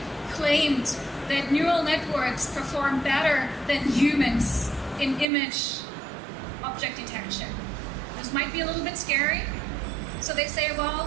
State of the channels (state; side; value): drops out; left; at 5.2 s